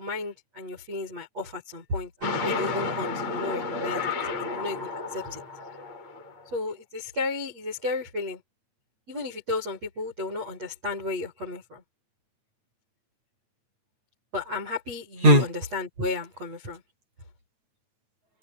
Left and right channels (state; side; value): late; left; 8.4 ms